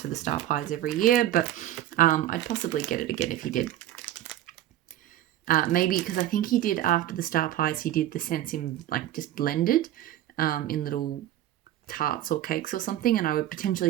for the star pies every year, but I'd possibly get it again if he did. Maybe because I think he did, after the star pies, he did the scents in like just blended in little tarts or cakes or something, and I would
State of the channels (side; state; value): left; quieter; 13.1 dB